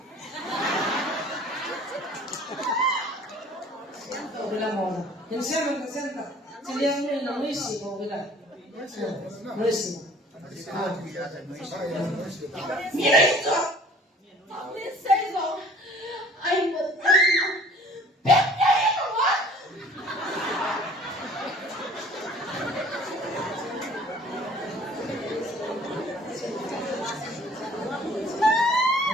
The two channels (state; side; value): normal; both; correlation 0.51